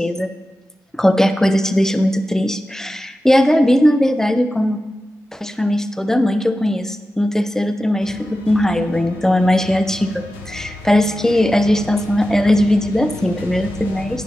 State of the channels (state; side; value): normal; both; correlation 0.93